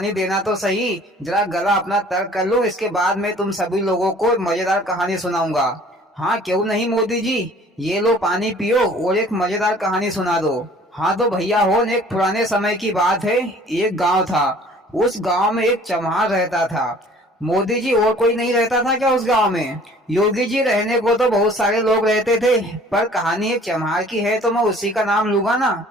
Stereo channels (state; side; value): normal; both; correlation 0.52